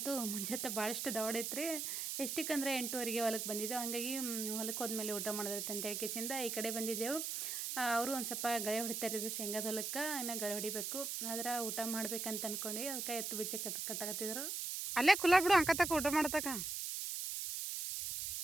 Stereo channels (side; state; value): right; noise; hiss, 3 dB below the sound